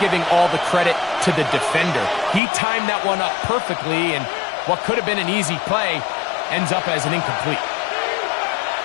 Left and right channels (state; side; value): drops out; right; at 2.4 s